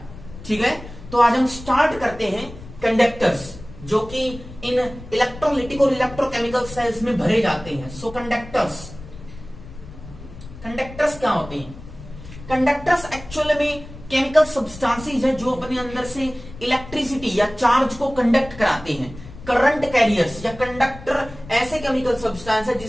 ठीक है, तो आज हम स्टार्ट करते हैं कंडक्टर्स, जो कि इन इलेक्ट्रोलिटिक और इलेक्ट्रोकेमिकल सेल्स में भरे जाते हैं। सो कंडक्टर्स क्या होते हैं? कंडक्टर्स एक्चुअली में केमिकल सब्सटेंसेस है जो अपने अंदर से इलेक्ट्रिसिटी या चार्ज को कंडक्ट कराते हैं। करंट कैरियर्स या कंडक्टर ऐसे केमिकल सब्सटेंस है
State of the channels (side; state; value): left; noise; rumble, 15 dB below the sound